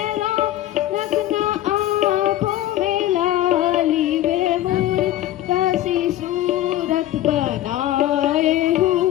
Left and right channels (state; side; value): quieter; right; 13.8 dB